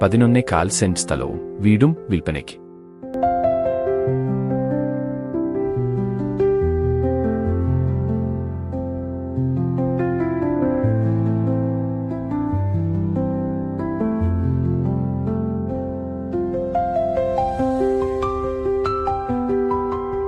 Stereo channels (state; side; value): identical; both; correlation 1.00